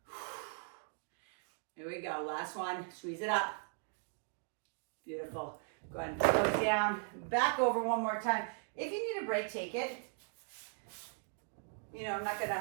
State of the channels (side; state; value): left; silent; 52 dB below the other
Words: Here we go, last one, squeeze it up. Beautiful. Go ahead and go down, back over one more time. If you need a break, take it. You know, I'm not